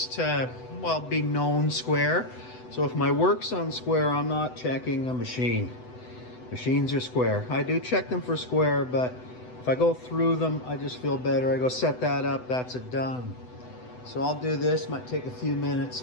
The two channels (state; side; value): late; right; 8.0 ms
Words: to, well, be known square. So if my work's on square, I'm not checking a machine. Machines are square. I do check them for square, but if I go through them, I just feel better. I go set that up, that's it done. So I'll do this, might take a few minutes.